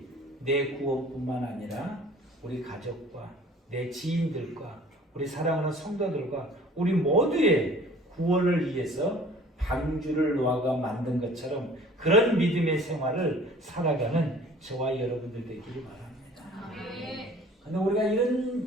내 구원뿐만 아니라 우리 가족과 내 지인들과 우리 사랑하는 성도들과 우리 모두의 구원을 위해서 방주를 노아가 만든 것처럼 그런 믿음의 생활을 살아가는 저와 여러분들 되기를 바랍니다. 그런데 우리가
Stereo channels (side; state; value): both; normal; correlation 0.50